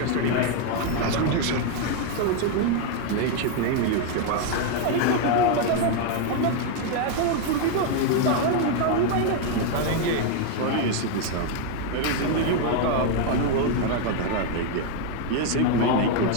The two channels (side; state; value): both; different; correlation 0.01